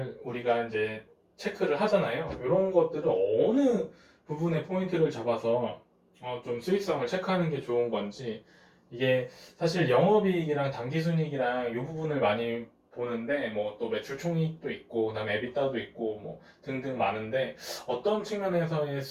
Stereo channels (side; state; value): both; identical; correlation 1.00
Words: 우리가 이제 체크를 하잖아요. 이런 것들을 어느 부분에 포인트를 잡아서 좀 수익성을 체크하는 게 좋은 건지, 이게 사실 영업이익이랑 당기순이익이랑 이 부분을 많이 보는데, 뭐 또 매출 총이익도 있고 그다음에 에비타도 있고 뭐 등등 많은데, 어떤 측면에서의